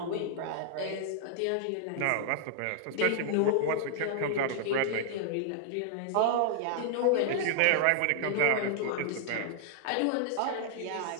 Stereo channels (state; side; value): different; both; correlation -0.01